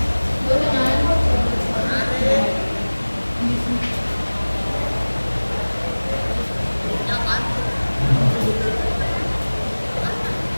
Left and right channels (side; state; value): both; inverted; correlation -1.00